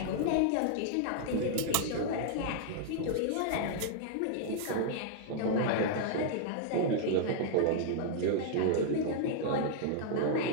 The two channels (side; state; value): both; different; correlation -0.01